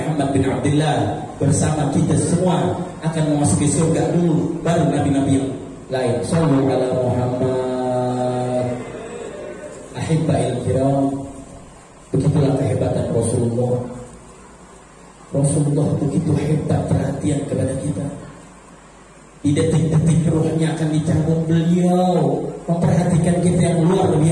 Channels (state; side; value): identical; both; correlation 1.00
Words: bin Abdullah bersama kita semua akan memasuki surga dulu, baru nabi-nabi yang lain. Sallallahu alaihi Muhammad. Ahibba'il kiram, begitulah kehebatan Rasulullah. Rasulullah begitu hebat perhatian kepada kita. Di detik-detik ruhnya akan dicabut, beliau memperhatikan kita yang luar